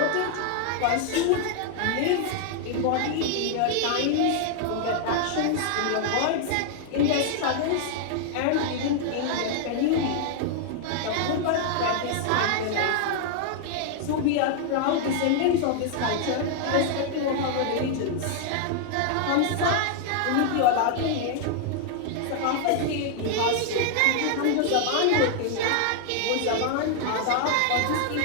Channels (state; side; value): different; both; correlation 0.00